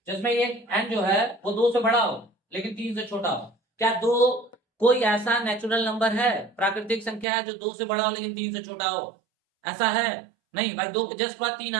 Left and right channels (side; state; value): left; drops out; at 7.2 s